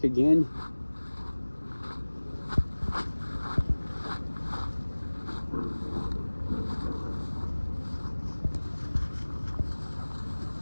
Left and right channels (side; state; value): both; inverted; correlation -1.00